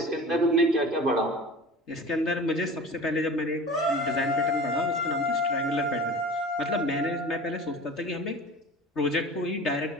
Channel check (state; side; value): normal; both; correlation 0.38